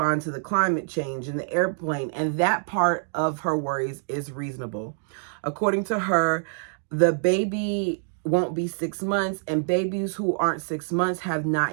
to the climate change in the airplane. And that part of her worries is reasonable. According to her, the baby won't be 6 months, and babies who aren't 6 months have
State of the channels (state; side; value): silent; left; 61 dB below the other